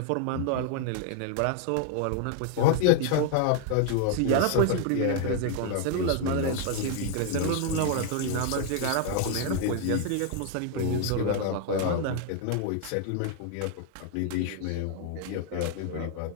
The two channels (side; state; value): both; different; correlation 0.00